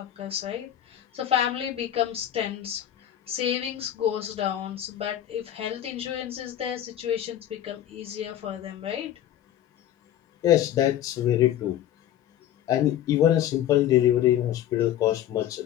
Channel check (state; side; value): quieter; right; 11.6 dB